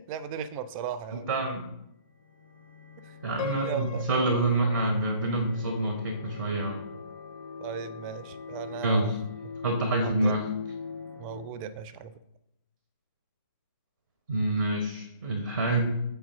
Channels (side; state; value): both; inverted; correlation -0.55